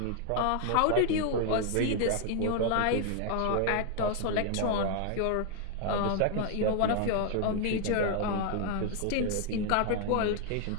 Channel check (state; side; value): different; both; correlation 0.00